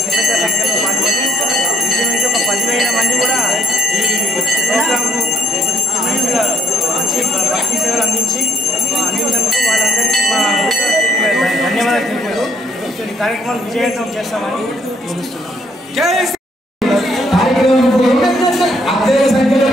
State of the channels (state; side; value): normal; both; correlation 0.66